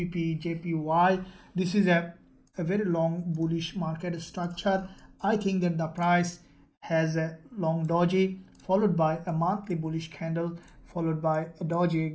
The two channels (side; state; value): both; identical; correlation 1.00